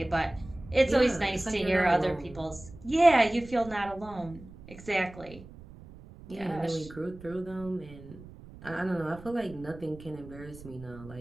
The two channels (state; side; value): noise; right; rumble, 18 dB below the sound